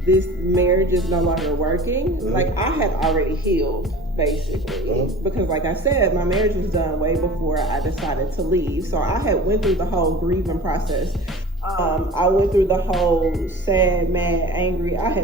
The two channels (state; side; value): normal; both; correlation 0.40